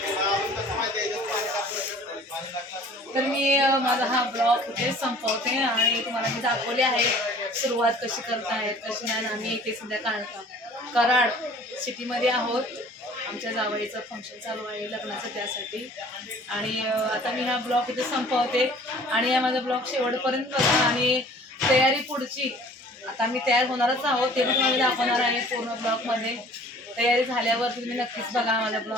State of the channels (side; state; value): both; normal; correlation 0.50